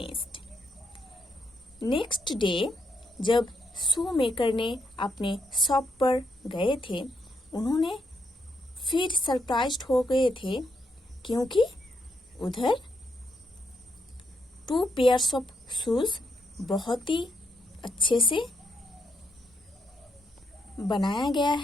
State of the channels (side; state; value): both; normal; correlation 0.78